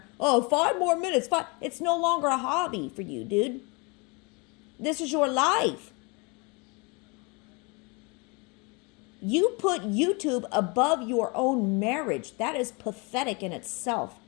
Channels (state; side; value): quieter; right; 29.8 dB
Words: 5 more minutes. It's no longer a hobby for you, dude. This is your life. You put YouTube above your own marriage. That is pathetic in itself.